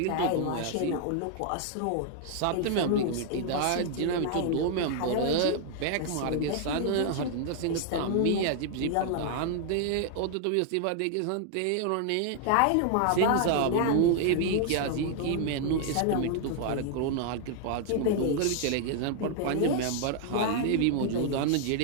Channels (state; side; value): different; both; correlation 0.00